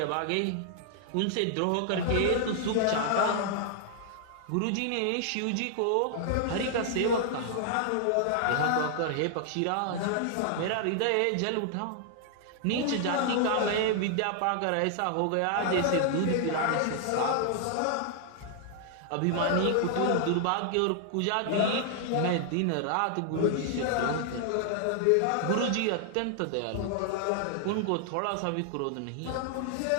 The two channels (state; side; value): different; both; correlation 0.00